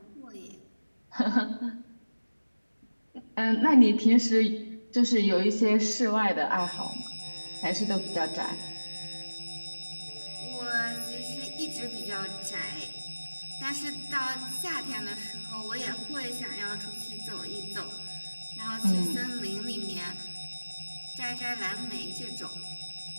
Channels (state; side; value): inverted; both; correlation -1.00